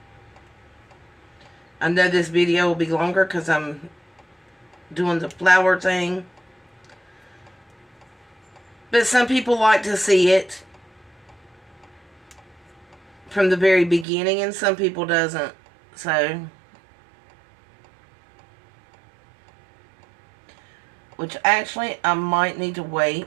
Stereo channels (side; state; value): left; drops out; at 14.1 s